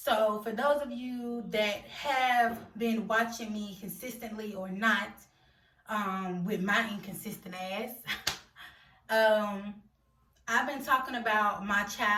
for those of you that have been watching me consistently or not, with my inconsistent ass, I've been talking about my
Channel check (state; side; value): identical; both; correlation 1.00